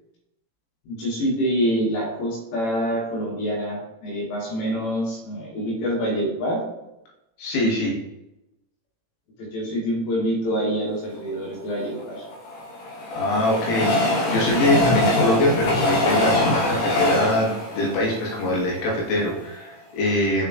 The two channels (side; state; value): right; late; 18 ms